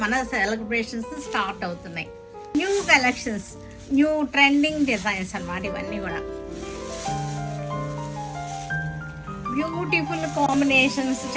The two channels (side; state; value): both; identical; correlation 1.00